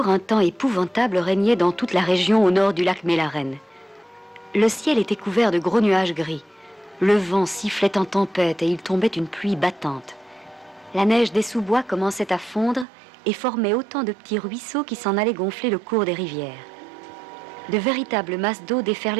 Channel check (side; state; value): left; drops out; at 12.9 s